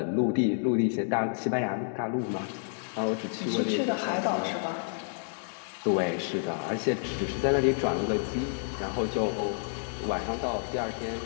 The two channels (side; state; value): right; silent; digital silence